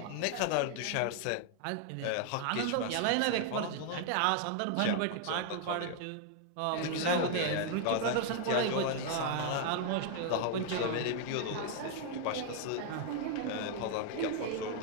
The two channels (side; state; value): both; different; correlation 0.00